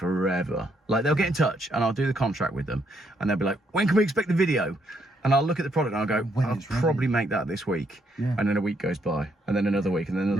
Like they'll get in touch and I'll do the contract with them, and they'll be like, "When can we expect the video?" And I'll look at the product and I'll go, "I'll probably make that this week." And then a week goes by, and then another week, and then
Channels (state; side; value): normal; both; correlation 0.74